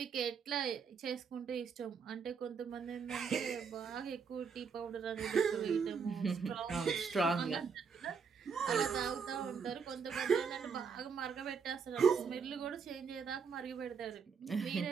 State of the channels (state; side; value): quieter; left; 6.0 dB